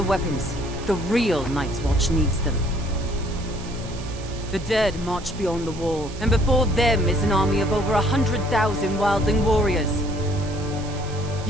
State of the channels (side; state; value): right; noise; hiss, 17 dB below the sound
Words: weapons. The real Night's Watch needs them. The dead march beyond the wall, and before them is an army of over 100,000 wildling warriors.